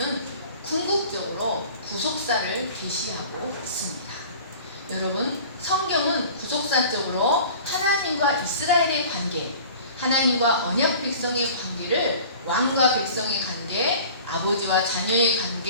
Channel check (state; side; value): inverted; both; correlation -0.43